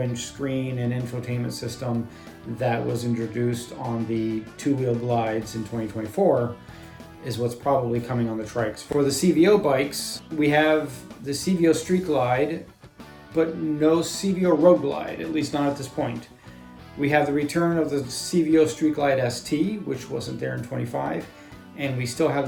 screen and infotainment system that was introduced on the two-wheel glides in 2024 is what's probably coming on the trikes. For the CVO bikes, we have the CVO Street Glide, but no CVO Road Glide, at least not at this point. We have the return of the CVO Street Glide ST, which wasn't there in 25, and we still have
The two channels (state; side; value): identical; both; correlation 1.00